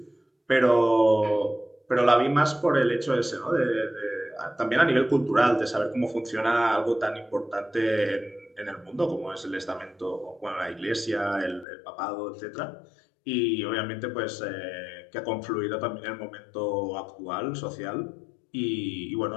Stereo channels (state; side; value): drops out; right; at 11.7 s